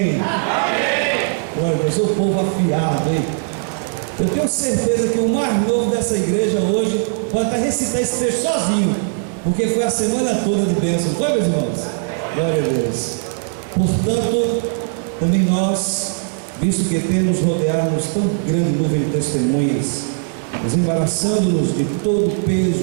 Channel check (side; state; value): left; silent; 67 dB below the other